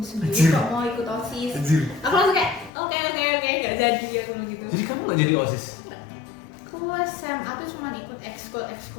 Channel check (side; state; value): right; drops out; at 2.7 s